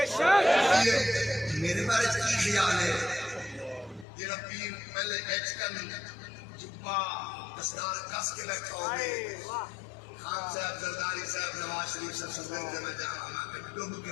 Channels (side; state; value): right; drops out; at 4.0 s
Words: میرے بارے کی خیال ہے جڑا پیر پہلے ایچ کن جبا دستار کس کے بیٹھا ہوگی، خان صاحب، زرداری صاحب، نواز شریف صاحب صدر میں جہاں ہمیں ڈوب